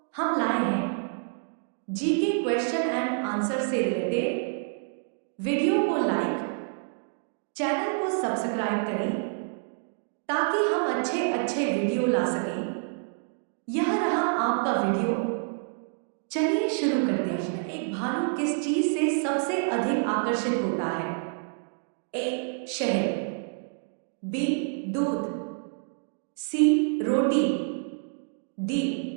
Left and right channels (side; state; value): left; silent; 59 dB below the other